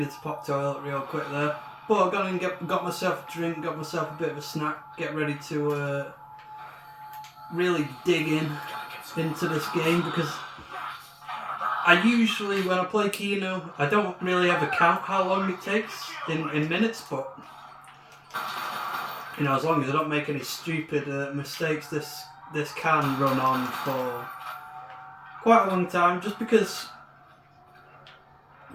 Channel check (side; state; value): both; identical; correlation 1.00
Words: to pop toilet real quick there. But I've gone and got myself a drink, got myself a bit of a snack, get ready to really dig into this game, because I usually, when I play Kino, I don't really ever count how long it takes in minutes, but as long as I don't make any stupid mistakes, this can run on for quite a long time, just because